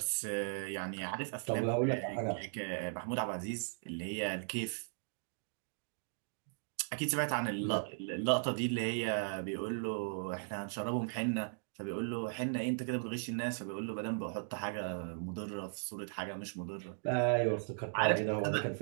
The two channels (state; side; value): silent; left; digital silence